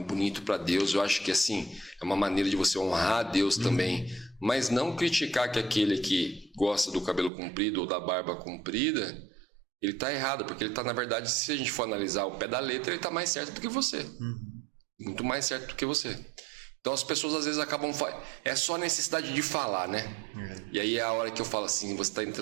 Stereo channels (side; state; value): left; drops out; at 7.3 s